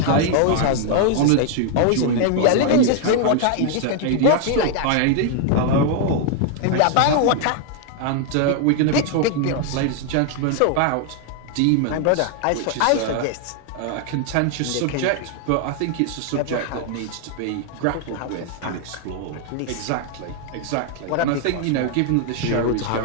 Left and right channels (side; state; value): both; different; correlation 0.00